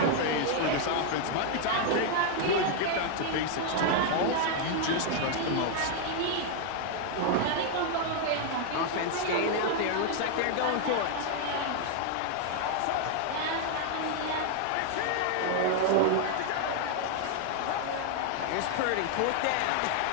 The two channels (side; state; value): both; different; correlation 0.00